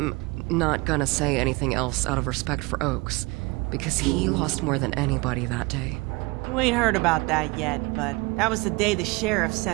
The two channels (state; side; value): quieter; left; 25.0 dB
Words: not gonna say anything else out of respect for Oaks, because he lost more than anybody that day. You ain't heard about that yet, but that was the day the sheriff